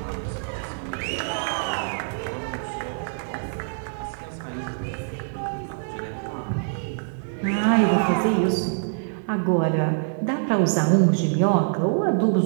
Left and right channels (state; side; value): silent; left; digital silence